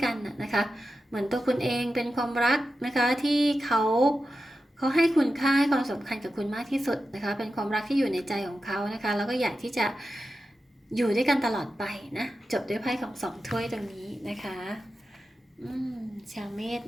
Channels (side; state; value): both; normal; correlation 0.91